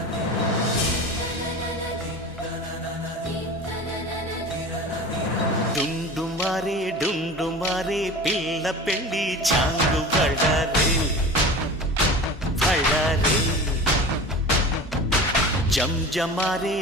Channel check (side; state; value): both; normal; correlation 0.35